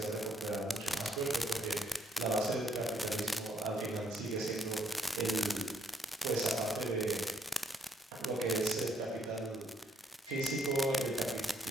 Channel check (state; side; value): normal; both; correlation 0.70